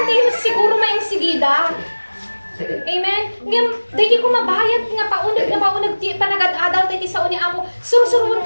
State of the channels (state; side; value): inverted; both; correlation -1.00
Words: tayo siguro may sigida. Amen? Ngayon, dahil ko mabayad nga paunag panagad-adal tayo sa uni ako, surusuruan